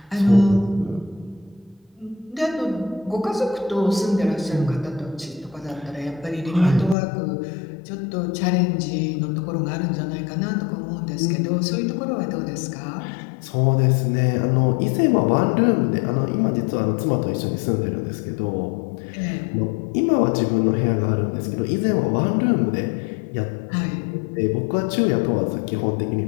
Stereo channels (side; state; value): right; drops out; at 7.0 s